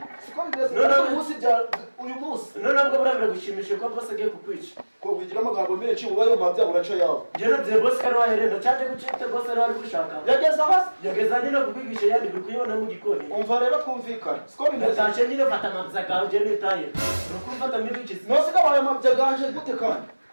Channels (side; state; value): both; inverted; correlation -1.00